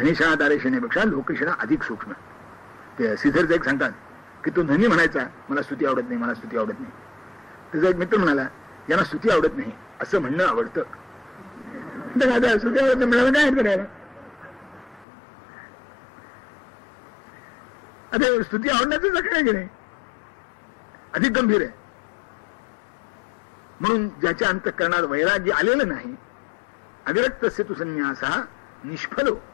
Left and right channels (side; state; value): right; drops out; at 15.1 s